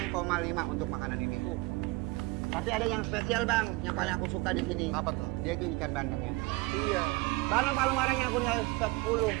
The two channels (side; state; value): left; quieter; 24.1 dB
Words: untuk makanan ini. Tapi ada yang spesial bang, yang paling aku suka di sini. Apa tuh? Dia itu ikan bandengnya. Iya. Bandeng palu marahnya aku nilai